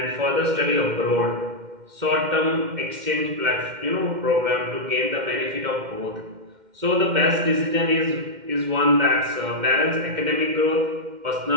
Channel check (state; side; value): late; left; 2.1 ms